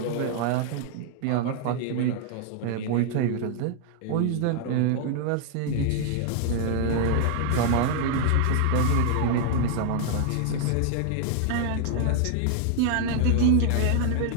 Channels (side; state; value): both; different; correlation 0.00